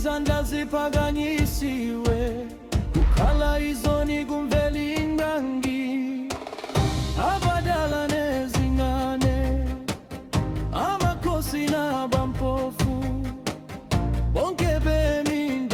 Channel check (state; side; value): identical; both; correlation 1.00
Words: ziphakanyisiwe, kukhala izoni kumveli ngangi. Abadala nezingane, amakhosi nabampofu, bonke bemi